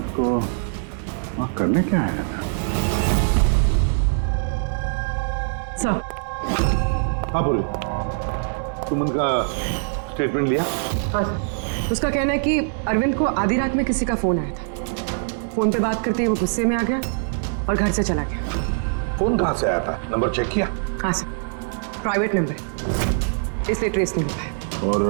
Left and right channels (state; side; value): silent; left; digital silence